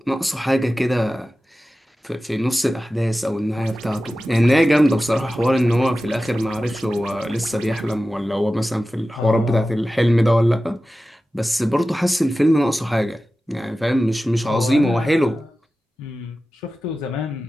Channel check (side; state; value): both; normal; correlation 0.94